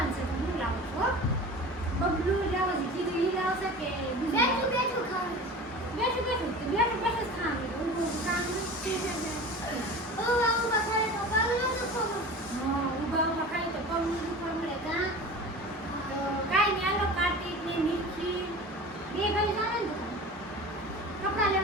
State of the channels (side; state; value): both; normal; correlation 0.36